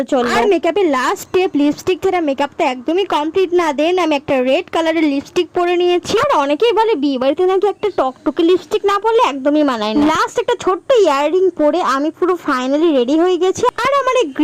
চললো। আর মেকআপের লাস্ট স্টেপ লিপস্টিক ছাড়া মেকআপটা একদমই কমপ্লিট না। দেন আমি একটা রেড কালারের লিপস্টিক পরে নিয়েছি। আর অনেকেই বলে বিয়ে বাড়িতে নাকি একটা টকটকে লিপস্টিক না পরলে একদমই মানায় না। লাস্ট একটা ছোট্ট ইয়াররিং পরে আমি পুরো ফাইনালি রেডি হয়ে গেছি। আর আমার এই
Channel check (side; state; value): both; identical; correlation 1.00